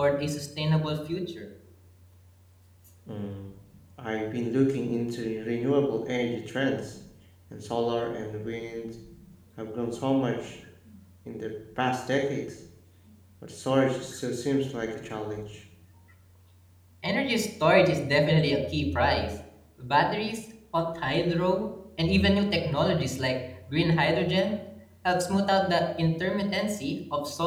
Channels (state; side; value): identical; both; correlation 1.00